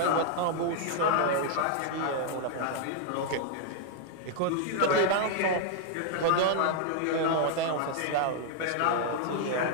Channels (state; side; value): different; both; correlation 0.00